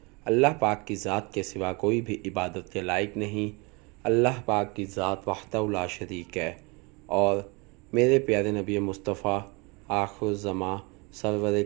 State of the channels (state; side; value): quieter; left; 28.6 dB